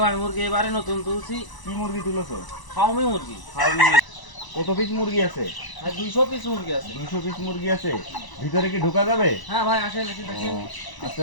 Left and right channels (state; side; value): late; right; 1.0 ms